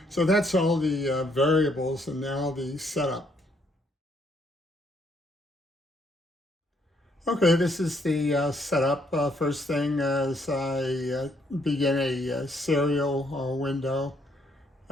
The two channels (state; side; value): normal; both; correlation 0.70